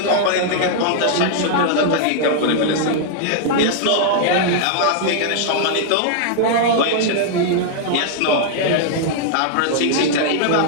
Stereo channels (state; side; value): different; both; correlation -0.01